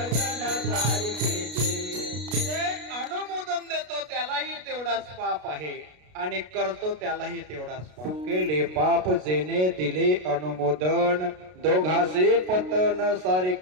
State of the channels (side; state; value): left; late; 33 ms